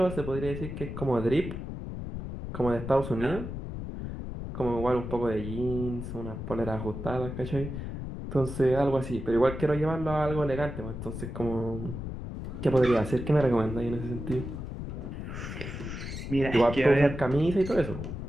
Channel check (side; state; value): left; noise; rumble, 7 dB below the sound